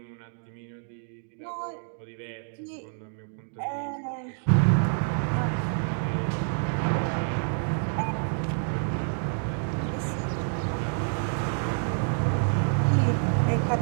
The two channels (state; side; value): silent; left; 59 dB below the other